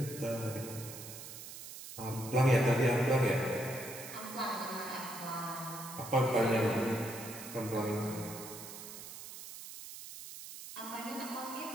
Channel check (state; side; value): noise; right; hiss, 12 dB below the sound